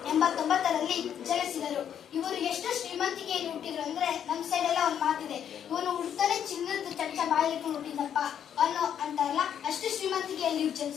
ಜನಿಸಿದರು. ಇವರು ಎಷ್ಟು ಶ್ರೀಮಂತಿಕೆಯಲ್ಲಿ ಹುಟ್ಟಿದ್ರು ಅಂದ್ರೆ ನಮ್ಮ ಸೈಡ್ ಎಲ್ಲ ಒಂದು ಮಾತಿದೆ, ಇವನು ಹುಡ್ತಾನೆ ಚಿನ್ನದ ಚಮಚ ಬಾಯಿಲಿಟ್ಟು ಹುಟ್ಟಿದಪ್ಪ ಅನ್ನೋ ಅಂತಾರಲ್ಲ, ಅಷ್ಟು ಶ್ರೀಮಂತಿಕೆಯಲ್ಲಿ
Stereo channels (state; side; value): quieter; right; 9.1 dB